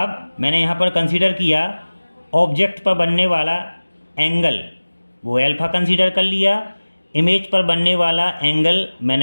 मैंने यहाँ पर कंसीडर किया ऑब्जेक्ट पर बनने वाला एंगल, वो एल्फा कंसीडर कर लिया। इमेज पर बनने वाला एंगल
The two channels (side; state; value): both; inverted; correlation -1.00